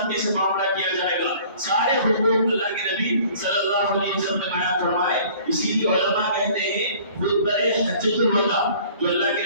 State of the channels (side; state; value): both; inverted; correlation -0.51